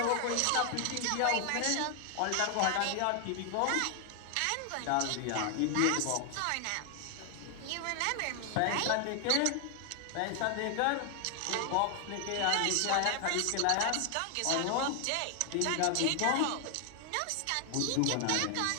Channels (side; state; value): both; different; correlation 0.00